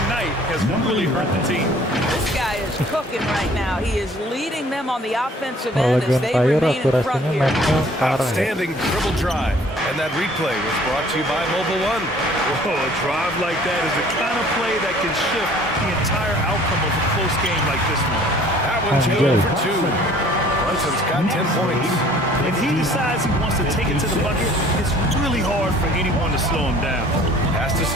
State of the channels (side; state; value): both; normal; correlation 0.54